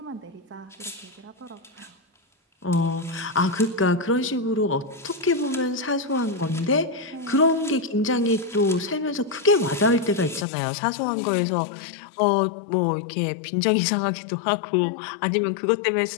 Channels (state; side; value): drops out; right; at 10.5 s